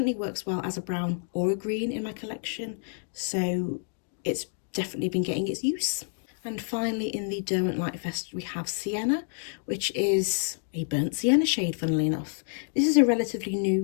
works well as a brown or a green in my collection, so it's definitely been getting its use. And finally in the Derwent Lightfast we have Sienna, which is a burnt sienna shade, funnily enough. This is a relatively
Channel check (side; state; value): right; silent; 59 dB below the other